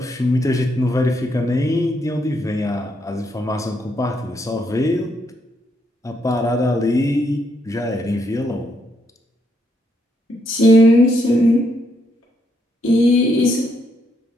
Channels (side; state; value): both; normal; correlation 0.76